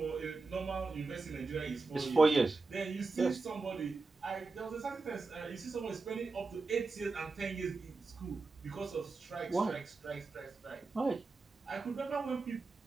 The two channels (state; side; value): quieter; left; 3.8 dB